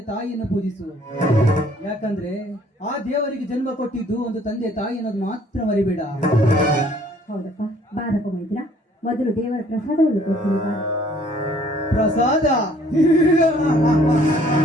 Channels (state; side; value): normal; both; correlation 0.59